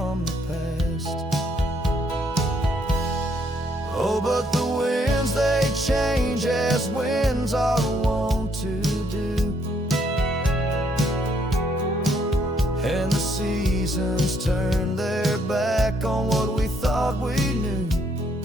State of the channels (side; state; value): both; normal; correlation 0.70